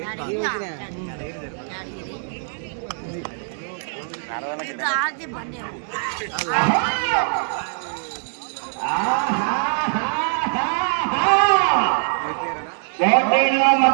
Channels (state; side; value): silent; left; digital silence